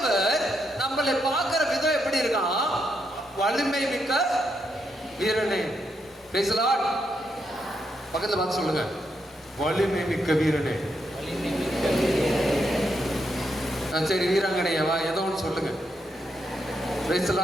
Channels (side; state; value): both; normal; correlation 0.80